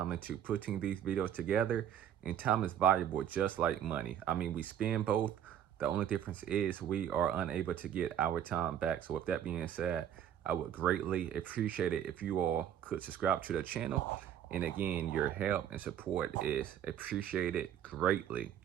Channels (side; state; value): left; quieter; 10.0 dB